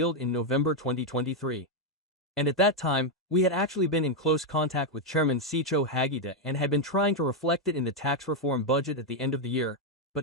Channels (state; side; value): normal; both; correlation 0.02